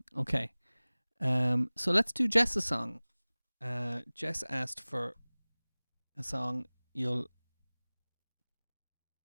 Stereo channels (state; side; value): inverted; both; correlation -1.00